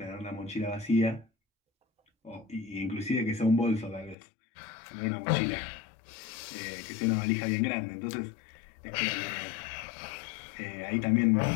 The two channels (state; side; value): drops out; right; at 4.2 s